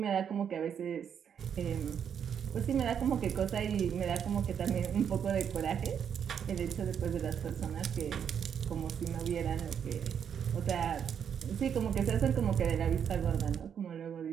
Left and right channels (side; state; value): left; quieter; 8.0 dB